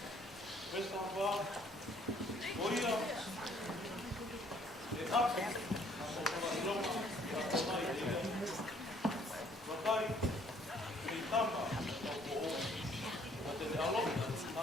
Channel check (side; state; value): both; normal; correlation 0.62